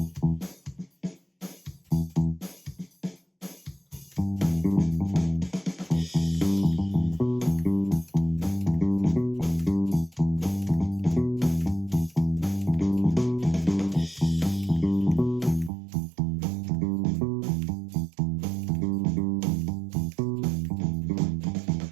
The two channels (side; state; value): left; drops out; at 15.7 s